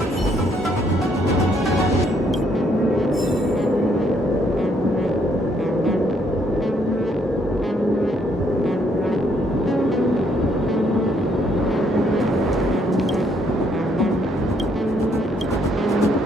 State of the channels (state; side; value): normal; both; correlation 0.69